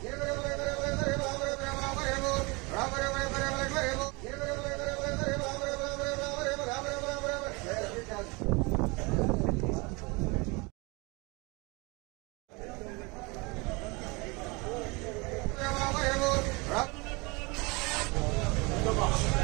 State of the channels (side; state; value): left; quieter; 27.3 dB